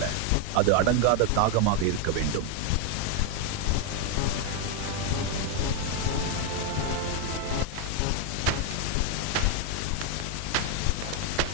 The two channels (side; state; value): both; different; correlation 0.01